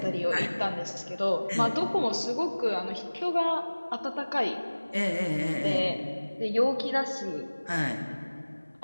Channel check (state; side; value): inverted; both; correlation -1.00